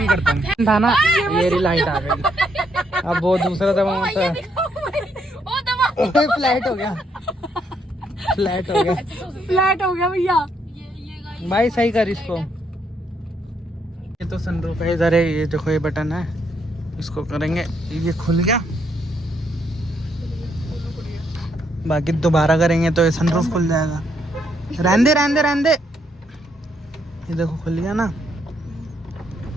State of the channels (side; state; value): both; normal; correlation 0.74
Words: करता हूँ था ना, ये रही लाइट आ गई। अब वो दूसरा दबा होता है, ओ दबा। फ्लैट हो गया, फ्लैट हो गया, फ्लैट हो गया भैया। ये भाई सही कर इसको। ये तो सनरूफ है, इधर है, ये देखो ये बटन है, इसको करेंगे, ये खुल गया। बाकी दोबारा करेंगे तो ये सनरूफ खुल जाएगा। रहने दे। ये देखो खुल गया ना।